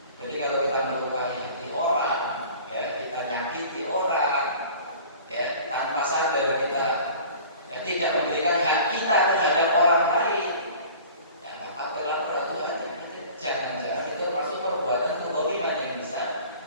Jadi kalau kita melukai hati orang, ya, kita nyakiti orang, ya, tanpa sadar kita tidak memberikan hak kita terhadap orang lain, ya, maka berlaku aturan. Jangan-jangan itu masuk perbuatan kezaliman yang bisa,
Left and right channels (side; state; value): both; inverted; correlation -0.44